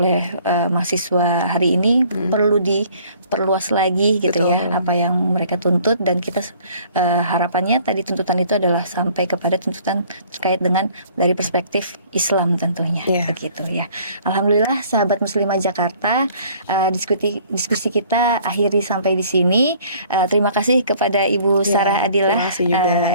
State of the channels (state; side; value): inverted; both; correlation -0.55